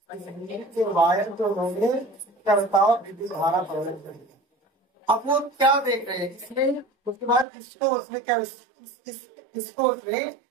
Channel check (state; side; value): drops out; left; at 7.5 s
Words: बिजली के वायर को उन्होंने क्या बताओ, विद्युत धारा प्रदान कर दिया। अब वो क्या देख रहे हैं इसमें, उसके बाद इसको उसने क्या, इसको उसने